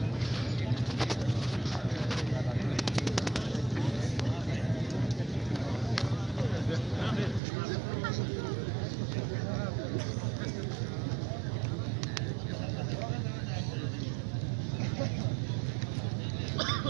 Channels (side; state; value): left; drops out; at 7.4 s